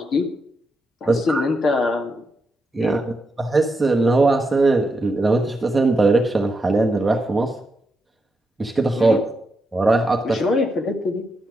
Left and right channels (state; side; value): normal; both; correlation 0.84